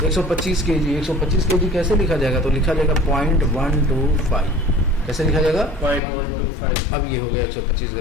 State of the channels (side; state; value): right; drops out; at 6.0 s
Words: 125 kg। 125 kg कैसे लिखा जाएगा, तो लिखा जाएगा 0.125। कैसे लिखा जाएगा, 0.125। अब ये हो गया 125